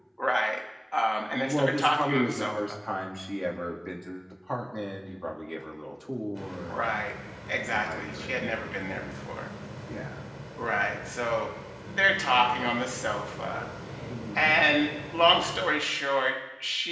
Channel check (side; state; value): both; identical; correlation 1.00